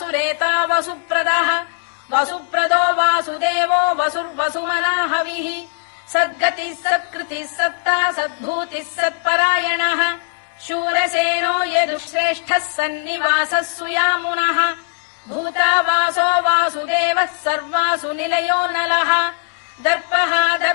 वसुप्रदः वसुप्रदो वासुदेवो वसुर्वसुमनाहविः सद्गतिः सत्कृतिः सत्ता सद्भूतिः सत्परायणः शूरसेनो यदुश्रेष्ठः सन्निवासः सुयामुनः भूतावासो वासुदेवः सर्वासु निलयो नलः दर्पः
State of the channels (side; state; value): right; silent; digital silence